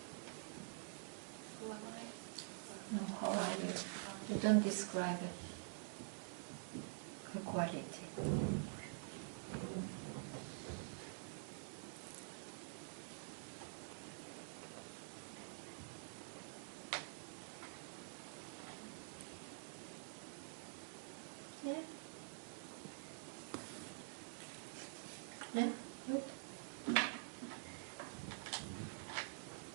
Who am I? No, how are you? You don't describe it. A quality. Yeah. Yeah, good.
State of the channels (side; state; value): left; silent; digital silence